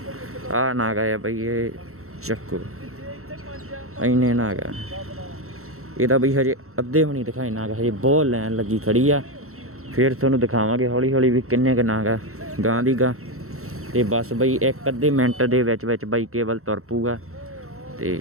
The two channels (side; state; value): left; late; 0.63 ms